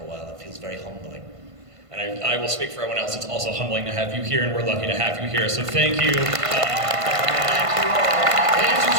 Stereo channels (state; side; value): late; left; 1.5 ms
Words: a while. It feels very humbling. And I will speak for everyone else, it's also humbling to have you here, and we're lucky to have you here, so thank you.